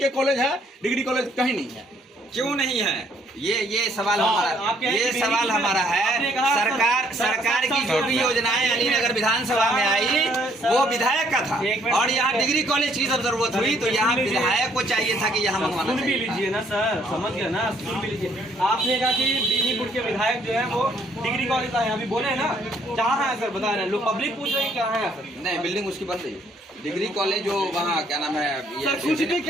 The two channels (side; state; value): both; normal; correlation 0.65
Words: कॉलेज है, डिग्री कॉलेज कहीं नहीं है। क्यों नहीं है? ये सवाल हमारा है। सरकार की जो भी योजनाएं अलीनगर विधानसभा में आई वो विधायक का था, और यहाँ डिग्री कॉलेज की जब जरूरत हुई तो यहाँ विधायक को चाहिए था कि यहाँ मंगवाना सुन भी चाहिए। लीजिए ना सर, समझ गए ना, सुन भी लीजिए। आपने कहा कि बेनीपुर के विधायक जो है वो डिग्री कॉलेज आए, अभी बोले ना जहाँ है सर, बता रहे हैं, लोग पब्लिक पूछ रहे हैं कहाँ है सर। नहीं, बिल्डिंग उसकी बन रही है, डिग्री कॉलेज जो वहाँ क्या नाम है, सर कुछ भी